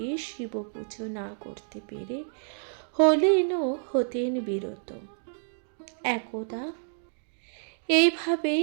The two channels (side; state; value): left; silent; digital silence